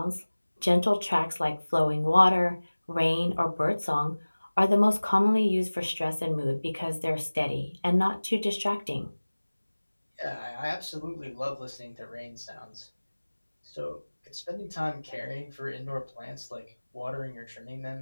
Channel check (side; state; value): both; inverted; correlation -1.00